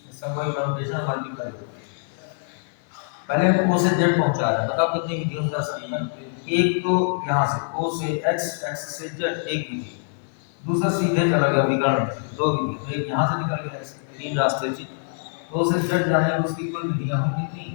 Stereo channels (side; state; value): right; silent; 62 dB below the other